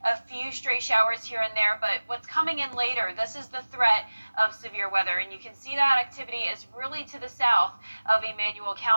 a few stray showers here and there, but what's coming in later, this is the threat of severe weather, and you can see that activity is really to the south of Emmanuel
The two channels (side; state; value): both; inverted; correlation -1.00